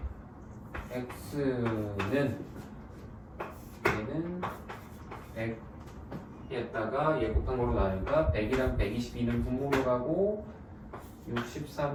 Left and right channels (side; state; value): both; identical; correlation 1.00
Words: x는 얘는 100에다가 얘 곱한 거로 나니까 100이랑 122는 분모로 가고